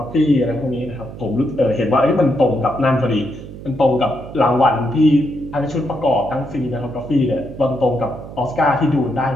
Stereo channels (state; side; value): noise; right; hum, 13 dB below the sound